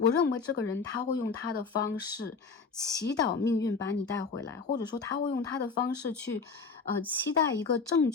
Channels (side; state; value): right; quieter; 4.8 dB